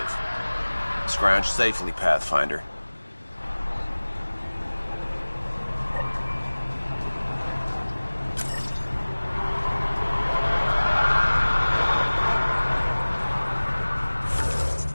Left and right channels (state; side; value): inverted; both; correlation -1.00